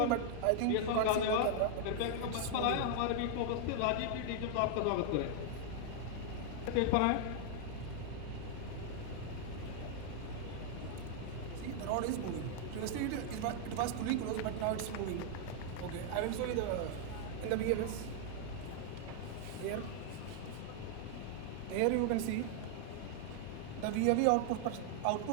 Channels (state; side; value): different; both; correlation 0.00